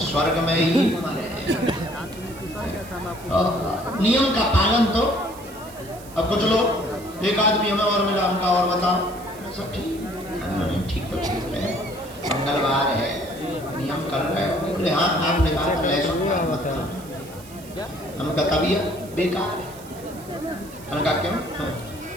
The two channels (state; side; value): noise; right; hiss, 20 dB below the sound